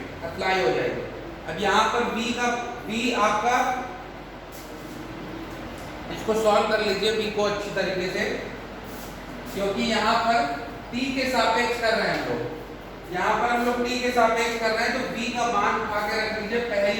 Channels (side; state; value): both; identical; correlation 1.00